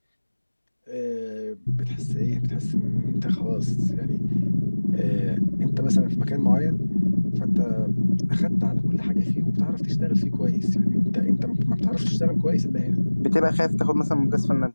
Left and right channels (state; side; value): inverted; both; correlation -1.00